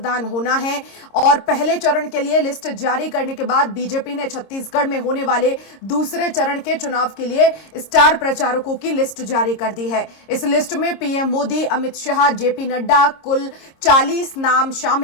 होना है और पहले चरण के लिए लिस्ट जारी करने के बाद बीजेपी ने छत्तीसगढ़ में होने वाले दूसरे चरण के चुनाव के लिए स्टार प्रचारकों की लिस्ट जारी कर दी है। इस लिस्ट में पीएम मोदी, अमित शाह, जेपी नड्डा, कुल 40 नाम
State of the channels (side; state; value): right; late; 26 ms